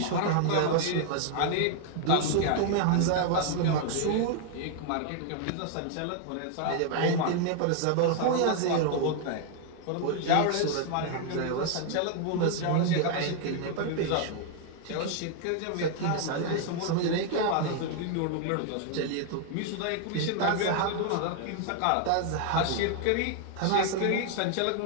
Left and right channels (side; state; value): both; different; correlation 0.00